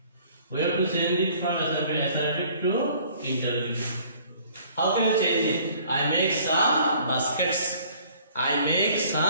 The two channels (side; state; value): both; inverted; correlation -0.55